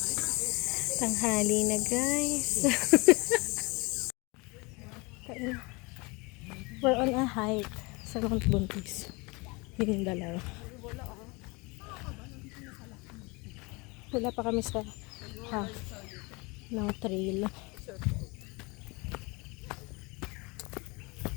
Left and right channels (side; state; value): right; quieter; 26.9 dB